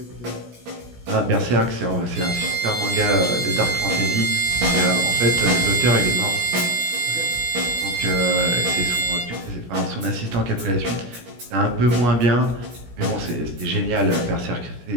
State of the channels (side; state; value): left; late; 17 ms